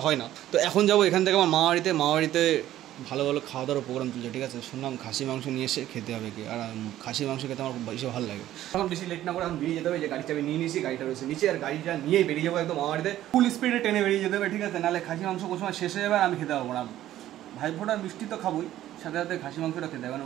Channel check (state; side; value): quieter; left; 13.3 dB